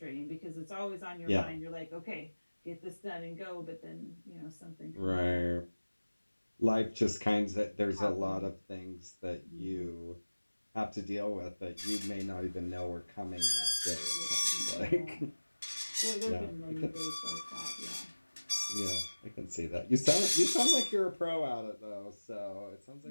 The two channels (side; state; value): both; inverted; correlation -1.00